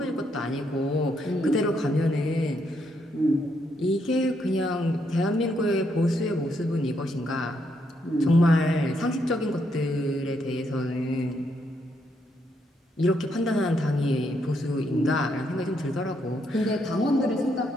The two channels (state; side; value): normal; both; correlation 0.76